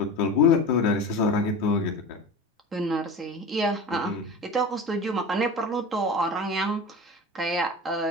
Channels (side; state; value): both; normal; correlation 0.31